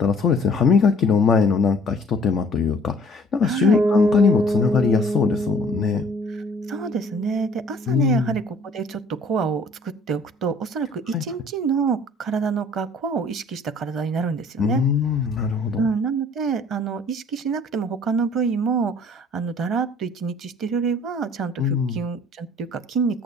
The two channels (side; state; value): both; normal; correlation 0.55